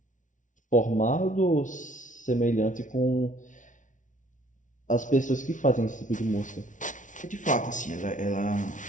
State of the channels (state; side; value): late; right; 0.37 ms